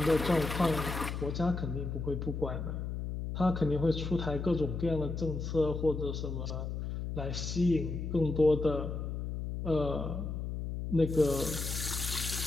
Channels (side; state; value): left; noise; hum, 4 dB below the sound